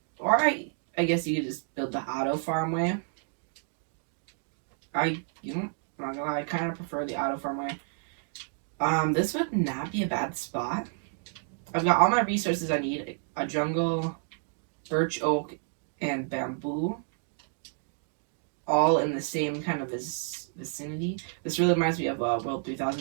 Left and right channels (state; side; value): silent; left; 58 dB below the other